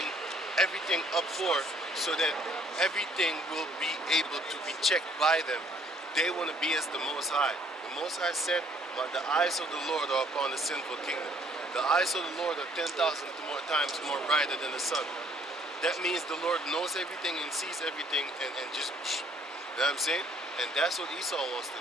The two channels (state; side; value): normal; both; correlation 0.62